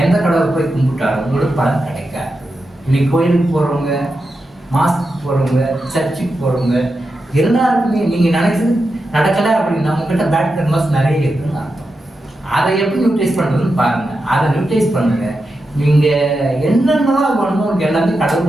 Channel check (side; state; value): both; normal; correlation 0.89